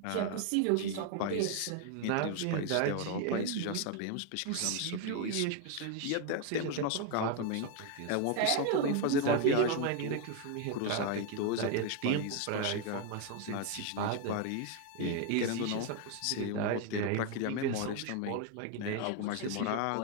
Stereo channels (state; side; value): different; both; correlation 0.01